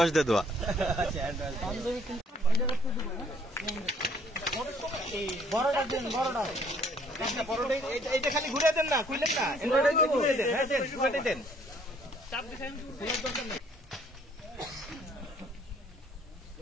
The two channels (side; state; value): both; normal; correlation 0.62